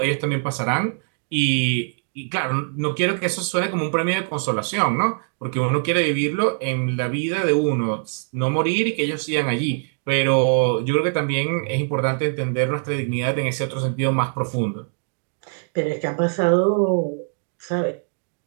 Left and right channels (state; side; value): silent; left; 60 dB below the other